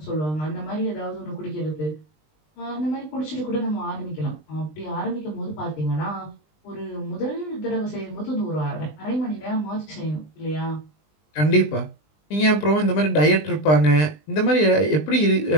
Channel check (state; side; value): late; right; 20 ms